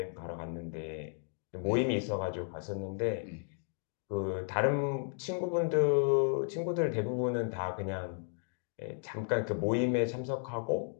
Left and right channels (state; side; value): silent; right; 55 dB below the other